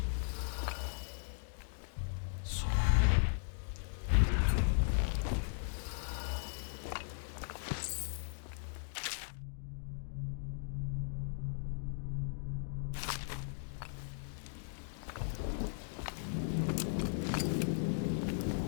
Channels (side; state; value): right; silent; digital silence